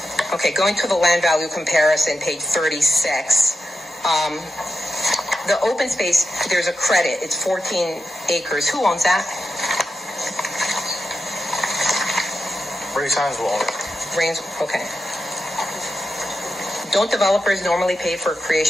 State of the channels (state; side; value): normal; both; correlation 0.88